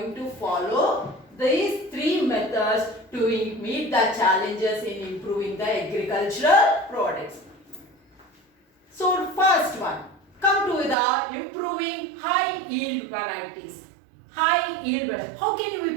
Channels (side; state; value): left; drops out; at 11.0 s